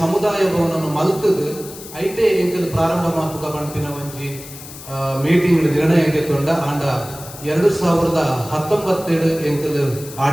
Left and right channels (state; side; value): noise; left; hiss, 15 dB below the sound